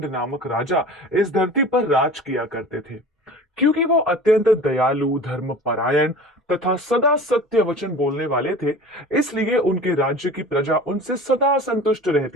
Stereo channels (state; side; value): normal; both; correlation 0.39